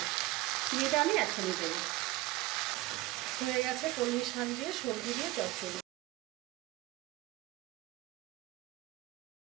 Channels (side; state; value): left; quieter; 18.7 dB